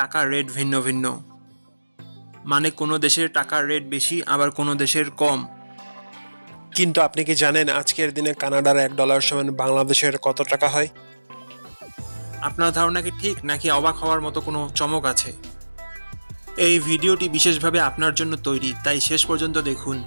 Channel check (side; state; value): both; inverted; correlation -1.00